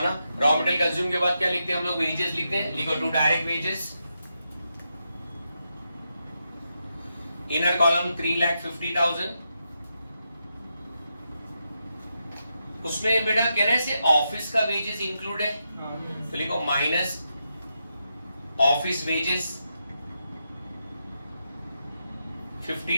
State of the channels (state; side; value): inverted; both; correlation -0.85